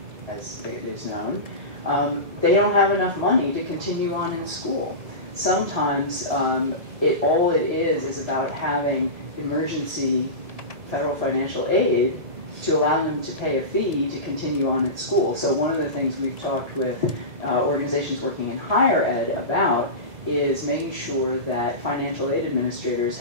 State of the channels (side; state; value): left; late; 2.0 ms